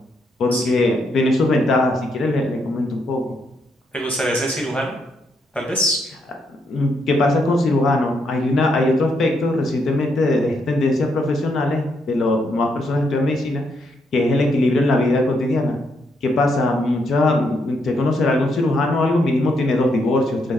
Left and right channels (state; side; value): normal; both; correlation 0.77